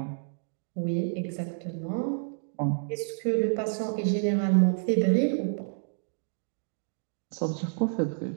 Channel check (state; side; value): silent; left; digital silence